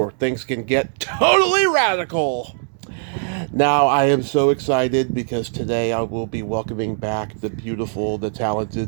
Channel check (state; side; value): silent; left; digital silence